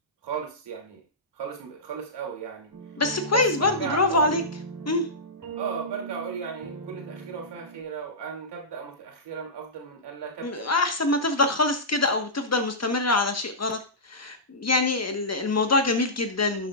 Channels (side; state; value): both; normal; correlation -0.16